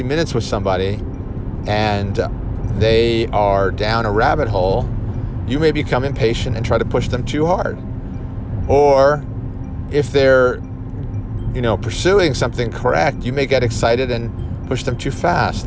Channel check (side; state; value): both; identical; correlation 1.00